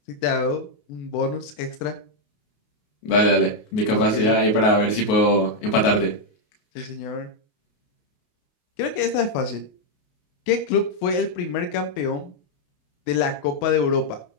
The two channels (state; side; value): late; right; 28 ms